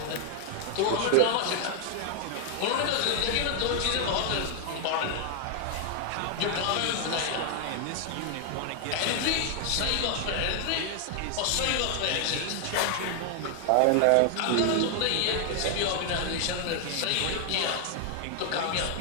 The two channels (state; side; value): different; both; correlation 0.00